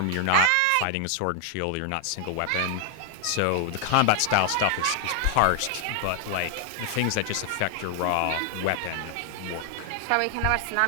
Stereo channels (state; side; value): different; both; correlation 0.00